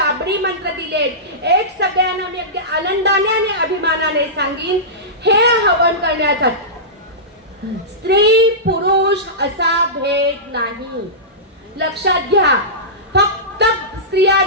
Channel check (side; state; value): both; normal; correlation -0.18